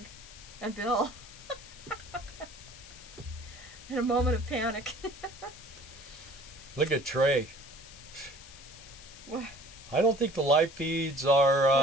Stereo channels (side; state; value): left; noise; hiss, 18 dB below the sound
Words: and Bill. In a moment of panic. Look at Trey. What? I don't think the live feeds